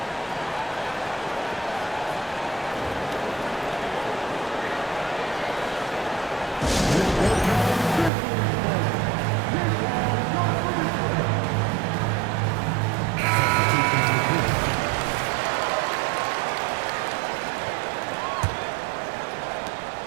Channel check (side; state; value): left; drops out; at 8.1 s